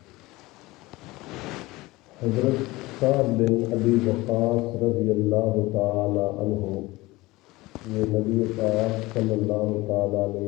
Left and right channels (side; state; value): right; quieter; 20.4 dB